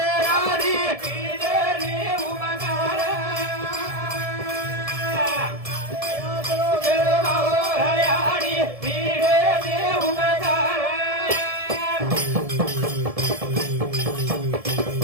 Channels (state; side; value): late; left; 1.7 ms